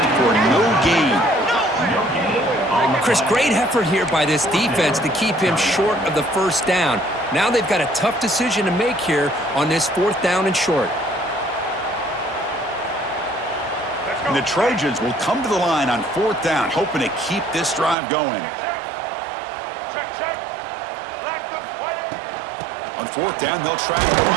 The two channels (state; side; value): drops out; left; at 17.9 s